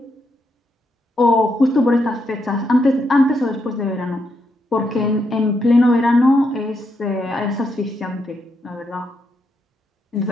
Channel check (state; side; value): normal; both; correlation 0.80